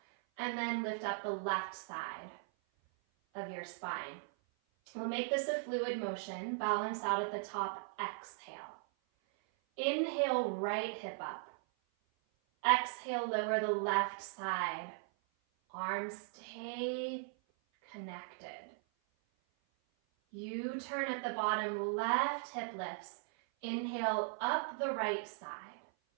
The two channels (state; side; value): silent; left; 52 dB below the other